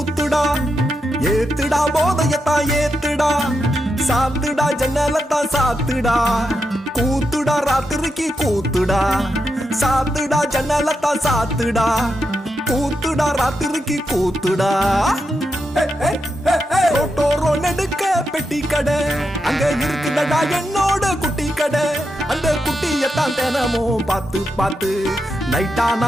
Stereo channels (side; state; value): both; normal; correlation 0.85